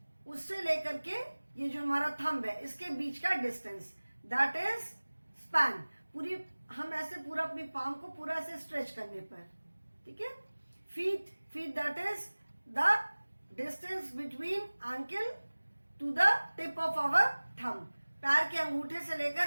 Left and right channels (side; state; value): both; inverted; correlation -1.00